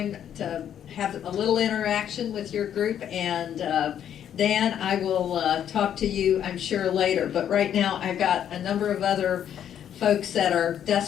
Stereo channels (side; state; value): right; quieter; 9.7 dB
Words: to have a little interaction with your group. And Dan, I will talk to you, I'm sure, later. But right now, I've got a number of other folks that are